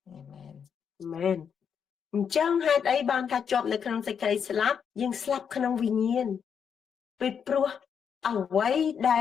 អាមែនអញ្ចឹងហេតុអីបានថាជាប់នៅក្នុងសេចក្តីស្លាប់យើងស្លាប់ក្នុងវិញ្ញាណពីព្រោះអ្វីដែ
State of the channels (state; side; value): quieter; right; 7.2 dB